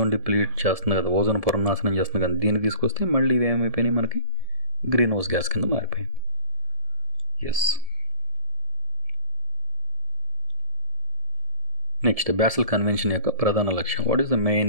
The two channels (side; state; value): left; late; 1.7 ms